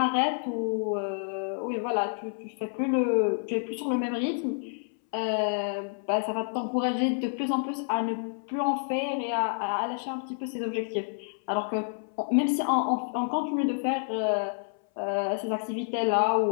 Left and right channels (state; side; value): silent; right; 59 dB below the other